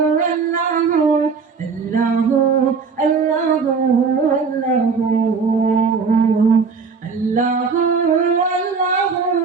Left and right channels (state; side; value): quieter; left; 5.3 dB